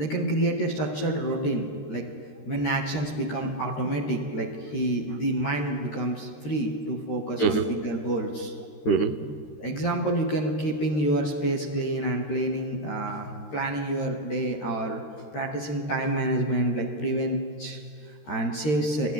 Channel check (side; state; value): right; late; 13 ms